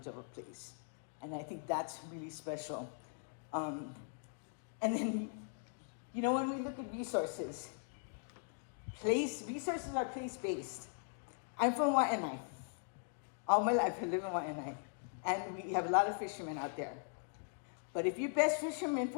of a place. And I think that's really special. And then, when we look at resources are place-based. I'm from Waianae. All my life I live in Waianae. And we have a lot of fishermen out there. But if your best fisherman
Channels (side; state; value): right; silent; digital silence